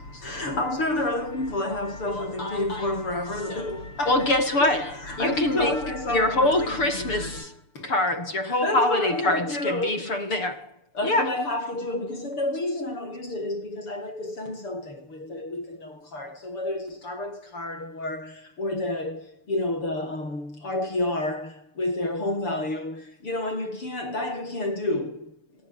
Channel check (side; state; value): right; late; 6.8 ms